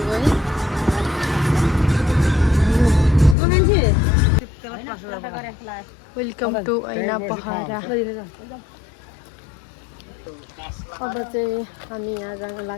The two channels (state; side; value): drops out; right; at 3.4 s